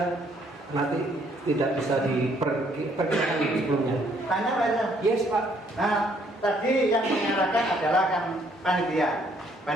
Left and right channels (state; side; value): normal; both; correlation 0.66